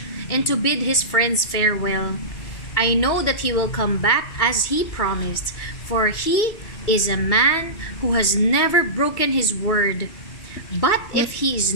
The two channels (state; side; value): late; right; 2.3 ms